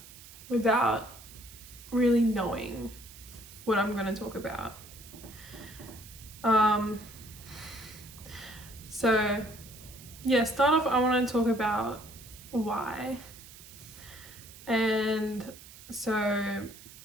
without really knowing what I'm going to talk about. So yeah, start off, I want to talk about why. And so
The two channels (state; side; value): noise; right; hiss, 18 dB below the sound